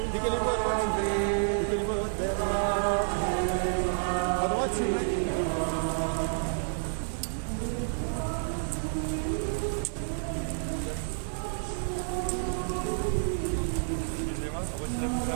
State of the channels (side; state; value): left; silent; digital silence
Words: Décalez-vous à droite, s'il vous plaît. Décalez-vous à droite. À droite, s'il vous plaît. Excusez-moi, resserrez-vous